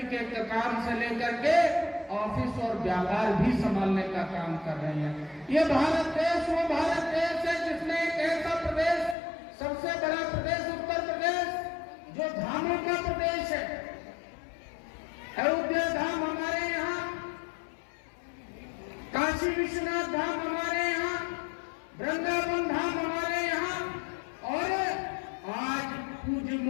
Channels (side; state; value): right; drops out; at 9.2 s